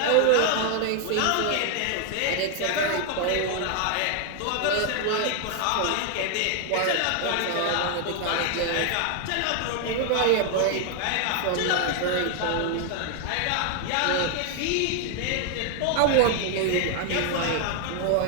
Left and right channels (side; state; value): both; different; correlation 0.00